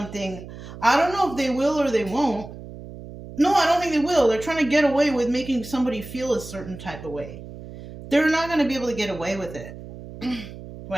I don't know if they will or they won't. No, I don't think they will. They're trying to get away with making somebody feel a certain type of way. They're not going to be able to get away with it.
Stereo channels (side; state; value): right; noise; hum, 14 dB below the sound